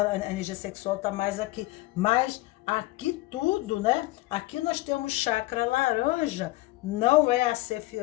energia sexual tá mais aqui, mas aqui tudo, né, aqui nós temos chakra laranja, não é a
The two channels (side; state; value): right; quieter; 19.1 dB